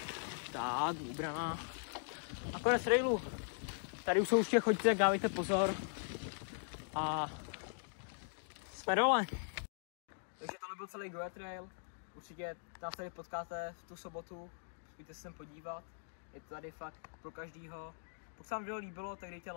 tak, vybraná. A konec trailu. Tady už jsou určitě, chodíte, tak dávejte pozor. A jsme dole. Takže tohle byl celý Goa Trail. Určitě nás tady potkáte v tu sobotu. Pojďte se sem podívat. Je to tady fakt pro každýho. Pokud se vám video líbilo, tak dejte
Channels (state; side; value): silent; right; digital silence